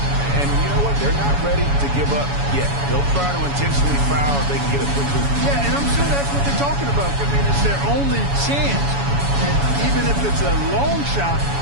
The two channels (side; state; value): left; late; 7.1 ms